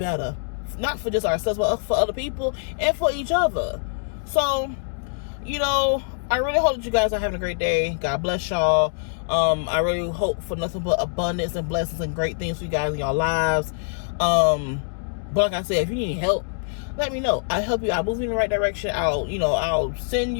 not for just ourselves, but for other people and for each other. So, you know, I really hope that you guys are having a great day. God bless y'all. I really hope for nothing but abundance and blessings and great things for you guys in your lives. But like I said, if you need help, let me know. I'll help you. I'll move you in the right direction. I'll send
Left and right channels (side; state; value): right; silent; digital silence